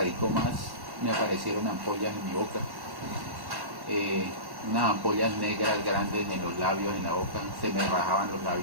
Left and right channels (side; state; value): left; late; 1.1 ms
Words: más, me aparecieron ampollas en mi boca, eh, unas ampollas negras grandes en los labios, en la boca, se me rajaban los